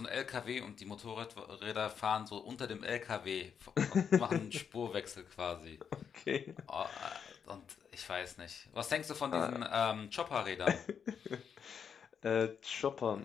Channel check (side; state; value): right; quieter; 7.2 dB